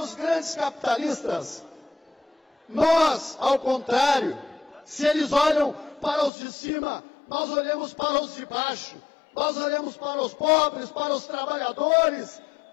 grandes capitalistas. Nós, ao contrário, se eles olham para os de cima, nós olhamos para os de baixo. Nós olhamos para os pobres, para os trabalhadores,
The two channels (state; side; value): drops out; right; at 6.3 s